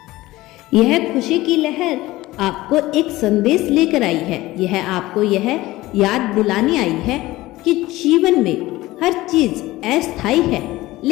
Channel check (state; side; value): quieter; right; 18.0 dB